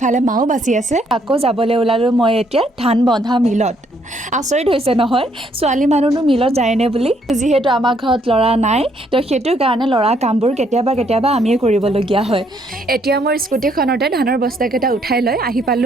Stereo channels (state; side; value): normal; both; correlation 0.69